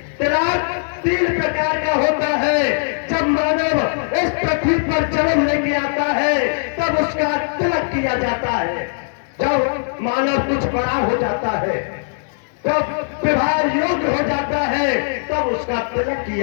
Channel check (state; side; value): silent; right; digital silence